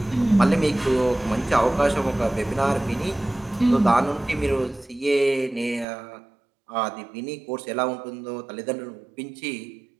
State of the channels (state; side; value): drops out; left; at 5.9 s